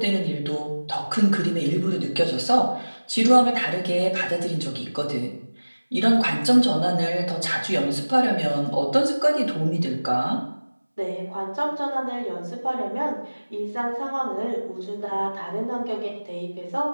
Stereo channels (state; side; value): inverted; both; correlation -1.00